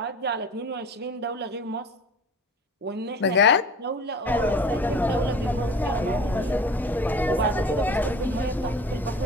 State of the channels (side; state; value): both; normal; correlation 0.40